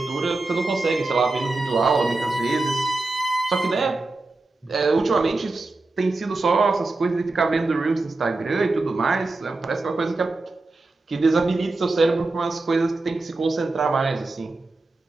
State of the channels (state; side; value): quieter; left; 3.3 dB